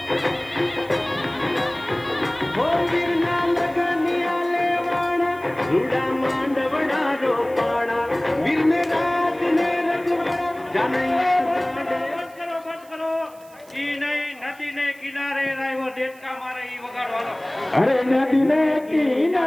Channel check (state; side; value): noise; right; hiss, 26 dB below the sound